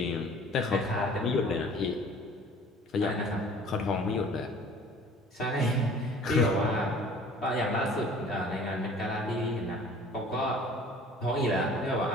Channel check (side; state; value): both; normal; correlation 0.49